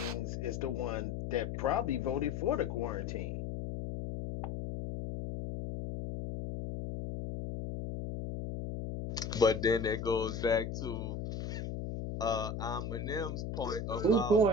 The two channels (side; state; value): left; noise; hum, 4 dB below the sound